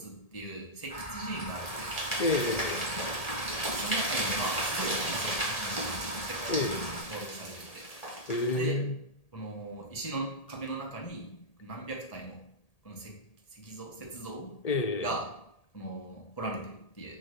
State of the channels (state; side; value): late; right; 1.8 ms